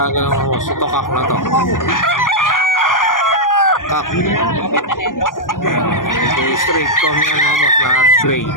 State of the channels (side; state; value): right; late; 0.90 ms